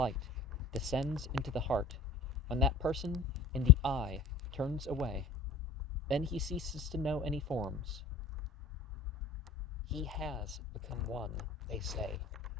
descends into the heart. When that person in the eye turns away, then he ceases to know any forms. He has become one, they say.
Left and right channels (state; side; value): quieter; right; 5.0 dB